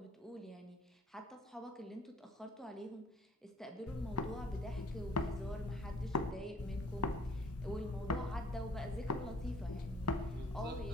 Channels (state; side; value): normal; both; correlation 0.59